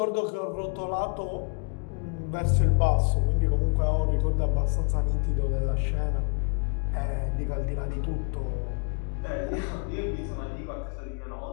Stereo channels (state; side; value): quieter; right; 39.3 dB